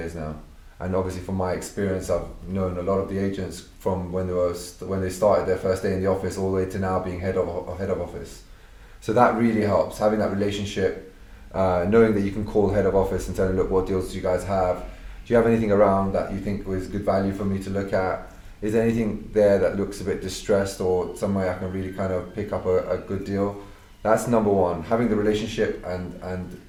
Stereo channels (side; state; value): both; identical; correlation 1.00